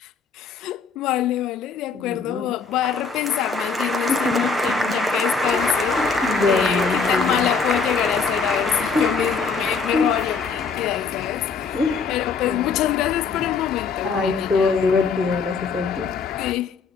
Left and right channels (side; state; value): right; quieter; 5.2 dB